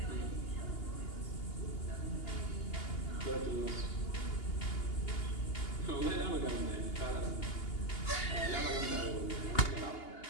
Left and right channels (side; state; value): right; late; 2.8 ms